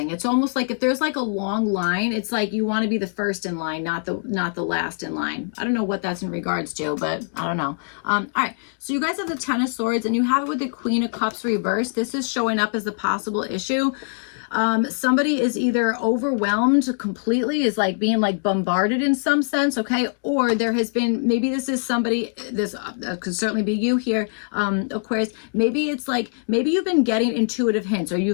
It's almost like if there's like a long line, it's like you want to be the first in line, not the last in line. I don't know what that's in regards to, but I don't know. All right. So you guys have the Ten of Swords and you have it with the Queen of Cups reversed. This is showing up as a possible issue. Somebody is either overwhelmed completely, is like being like bombarded in some sense, okay? Or there has been, maybe this is somebody, this could certainly be you here, Aquarius. Maybe it's like, maybe you've been getting intuitive hints, or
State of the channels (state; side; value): silent; right; digital silence